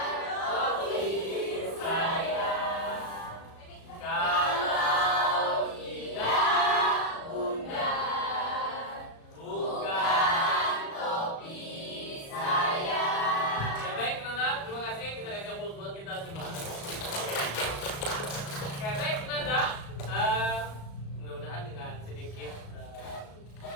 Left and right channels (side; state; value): right; late; 36 ms